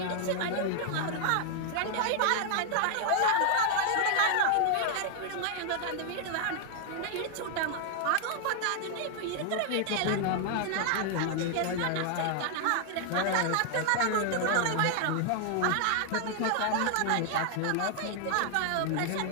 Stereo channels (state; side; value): different; both; correlation 0.00